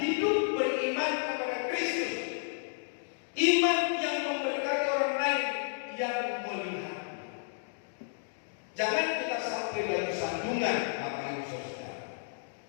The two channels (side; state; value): right; silent; digital silence